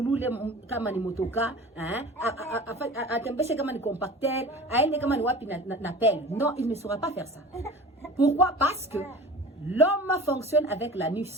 kama ni motoka, atembeshe kama ni compacteur, aende kama ni wapi na pelle. Non, il ne saura pas faire ça. Pourquoi? Parce que l'homme fonctionne avec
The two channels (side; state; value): both; normal; correlation 0.38